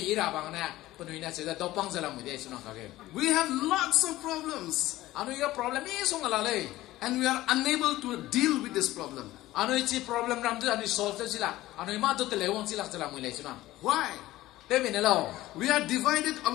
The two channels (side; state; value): right; quieter; 16.5 dB